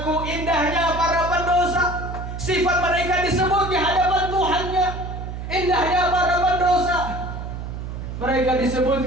Indahnya para pendosa, sifat mereka disebut di hadapan Tuhannya. Indahnya para pendosa, mereka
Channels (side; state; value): right; noise; hum, 7 dB below the sound